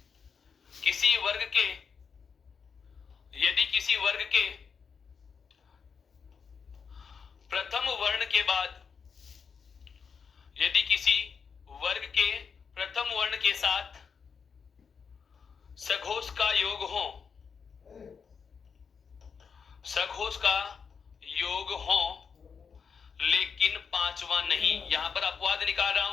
किसी वर्ग के प्रथम वर्ण के बाद, यदि किसी वर्ग के प्रथम वर्ण के साथ सघोष का योग हो, सघोष का योग हो लेकिन पांचवा नहीं, यहां पर अपवाद निकाल रहा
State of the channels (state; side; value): quieter; right; 6.1 dB